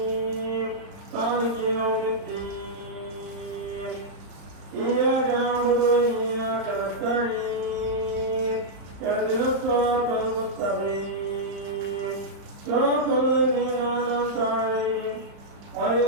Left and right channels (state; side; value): late; left; 35 ms